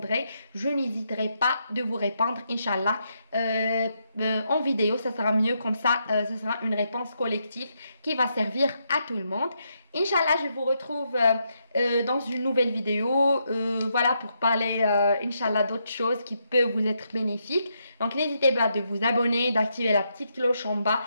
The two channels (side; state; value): both; inverted; correlation -0.80